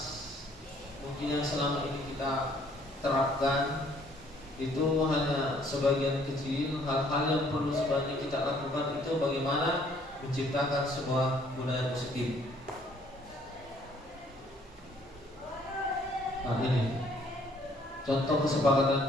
mungkin yang selama ini kita terapkan itu hanya sebagian kecil. Hal-hal yang perlu sebaiknya kita lakukan itu bagaimana menciptakan sebuah budaya positif. Nah ini contoh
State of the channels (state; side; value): normal; both; correlation 0.62